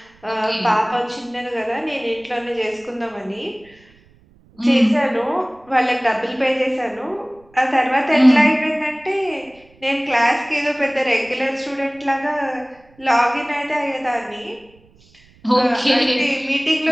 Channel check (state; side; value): noise; right; rumble, 30 dB below the sound